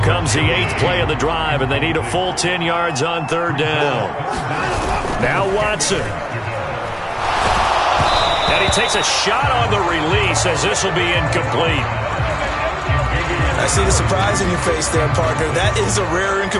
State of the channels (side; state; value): both; identical; correlation 1.00